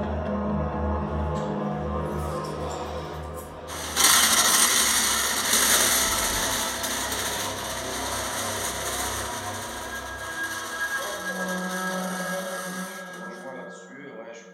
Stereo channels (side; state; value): both; identical; correlation 1.00